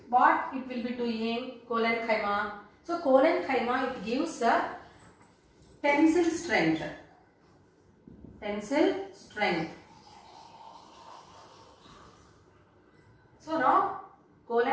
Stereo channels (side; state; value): both; identical; correlation 1.00